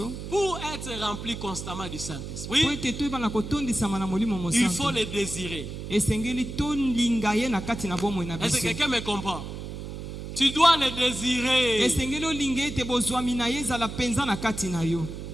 pour être rempli constamment du Po Saint-Esprit, ete toyeba na kotondisama na molimo il faut mosantu. le désirer. Esengeli tolinga ye na kati na bomoi na Est-ce que biso. quelqu'un me comprend? Tu dois le désirer. Esengeli olinga ete bozwami na ye ezala penza na kati na yo.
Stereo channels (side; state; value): right; noise; hum, 8 dB below the sound